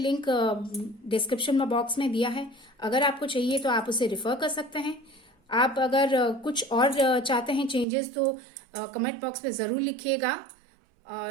डिस्क्रिप्शन में बॉक्स में दिया है। अगर आपको चाहिए तो आप उसे रिफर कर सकते हैं। आप अगर कुछ और चाहते हैं चेंजेस तो कमेंट बॉक्स में ज़रूर लिखिएगा।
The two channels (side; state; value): left; drops out; at 7.9 s